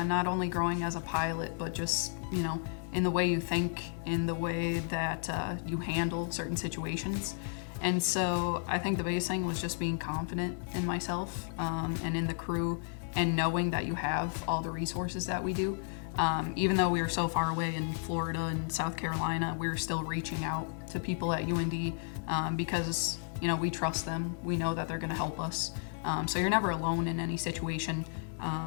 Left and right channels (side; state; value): right; silent; 56 dB below the other